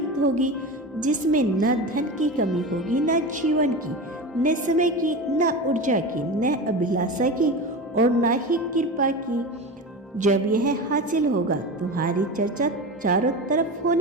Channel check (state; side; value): normal; both; correlation 0.26